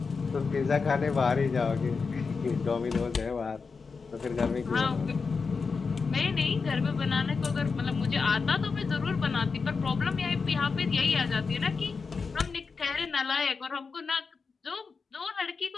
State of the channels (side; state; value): right; quieter; 4.9 dB